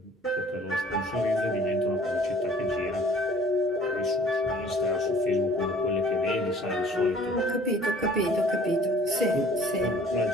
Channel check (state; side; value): normal; both; correlation 0.53